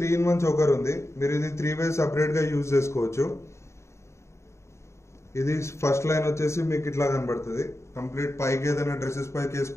3-in-1 చోకర్ ఉంది. మీరు ఇది 3 ways సపరేట్ గా యూజ్ చేసుకోవచ్చు. ఇది ఫస్ట్ లైన్ వచ్చేసి మీకు ఇట్లా కనబడుతుంది. కంప్లీట్ పైకి ఏదైనా డ్రెస్సెస్ పైకి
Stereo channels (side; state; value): right; late; 0.14 ms